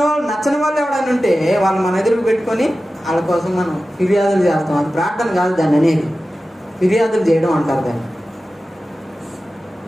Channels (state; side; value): normal; both; correlation 0.94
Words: వాళ్ళు ఎవడైనా ఉంటే వాళ్ళు మన ఎదురుకు పెట్టుకొని వాళ్ళ కోసం మనం ఫిర్యాదులు చేస్తాం. అది ప్రార్థన కాదు దాన్ని అనేది, ఫిర్యాదులు చేయడం అంటారు దాన్ని.